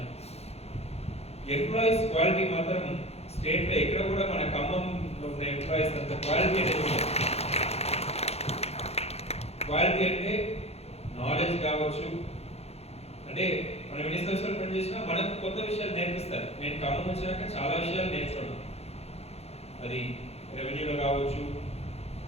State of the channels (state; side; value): late; right; 0.30 ms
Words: ఎంప్లాయీస్ క్వాలిటీ మాత్రం స్టేట్లో ఎక్కడ కూడా మన ఖమ్మంలో ఉన్న ఎంప్లాయీస్ అంత క్వాలిటీ అనేది ఉంటుంది. క్వాలిటీ అంటే నాలెడ్జ్ కావచ్చు, అంటే మనం ఎన్ని సంవత్సరాలు పనిచేసినా మనకు కొత్త విషయాలు నేర్పిస్తారు. నేను ఖమ్మం వచ్చినాక చాలా విషయాలు నేర్చుకున్నాను, అది రెవెన్యూలో కావచ్చు,